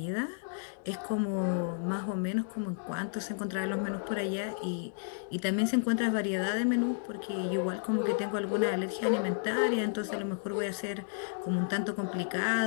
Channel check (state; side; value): silent; right; digital silence